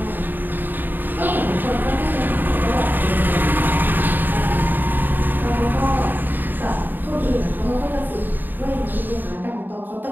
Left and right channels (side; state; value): left; late; 0.091 ms